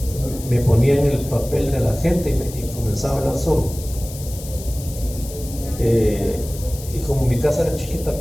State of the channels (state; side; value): noise; left; hiss, 14 dB below the sound